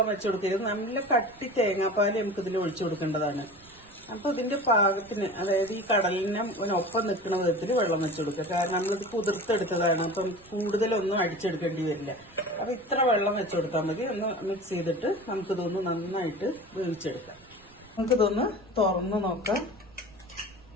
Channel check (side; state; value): right; noise; rumble, 26 dB below the sound